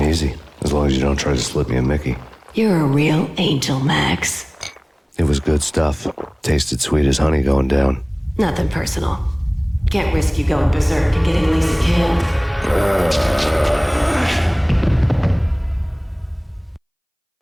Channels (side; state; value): both; identical; correlation 1.00